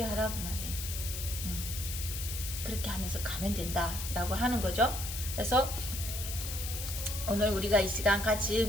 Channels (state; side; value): noise; left; hiss, 6 dB below the sound